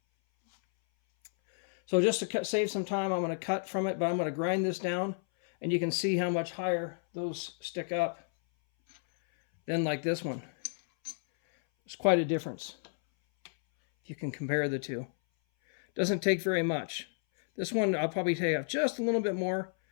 So just to save some time, I'm going to cut from it, but I'm going to grind this down, and you can see how much higher those stick up than like this one. There's quite a difference if you can compare the two. Doesn't take very much. This one I'll probably take off just a little bit more,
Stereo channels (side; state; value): right; silent; 57 dB below the other